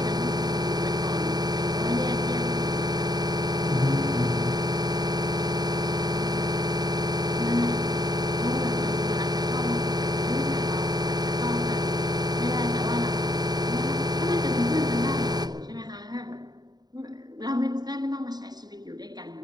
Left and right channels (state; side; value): late; left; 0.20 ms